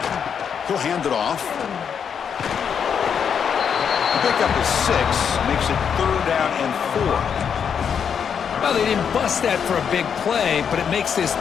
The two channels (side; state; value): right; quieter; 7.3 dB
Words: He'll hand it off. The pickup is 6, makes it 3rd down and 4. Well, they didn't bust that for a big play, but it makes this